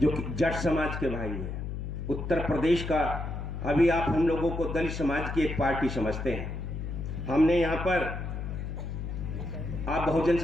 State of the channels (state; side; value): noise; left; hum, 5 dB below the sound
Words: जो जट समाज के भाई हैं, उत्तर प्रदेश का, अभी आप हम लोगों को दलित समाज की एक पार्टी समझते हैं। हमने यहाँ पर, आप बहुजन